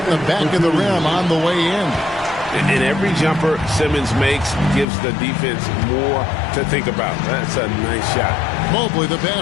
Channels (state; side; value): drops out; right; at 4.9 s